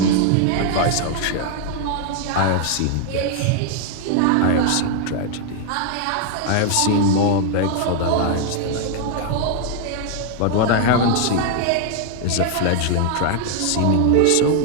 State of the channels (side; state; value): both; different; correlation 0.00